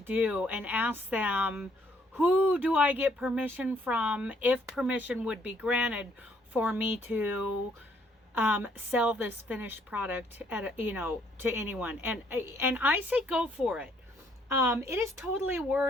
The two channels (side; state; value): both; normal; correlation 0.67